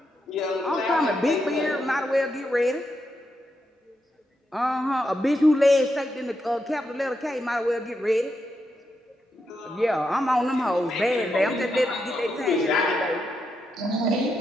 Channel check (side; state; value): both; normal; correlation 0.83